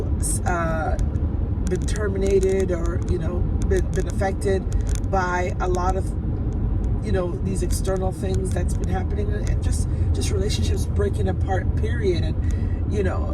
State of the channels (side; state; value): both; identical; correlation 1.00